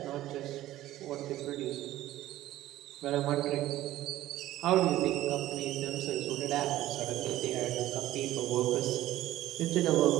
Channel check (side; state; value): left; quieter; 14.7 dB